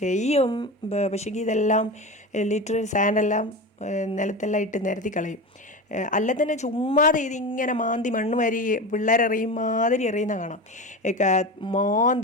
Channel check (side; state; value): both; normal; correlation 0.25